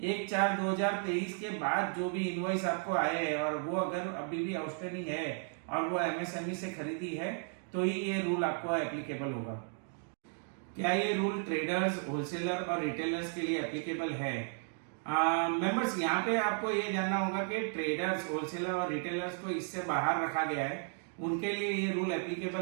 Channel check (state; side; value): silent; left; 55 dB below the other